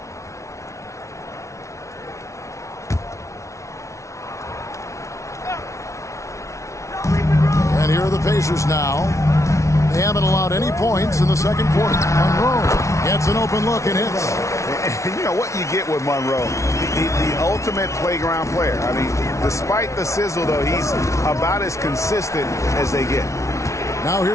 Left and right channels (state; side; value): late; right; 0.14 ms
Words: And here are the Pacers now. They haven't allowed any points in the second quarter. Monroe gets an open look and hits. And you know what you get with Monroe? The ultimate playground player. I mean, despite the sizzle, though, he's about as consistent as they get. Now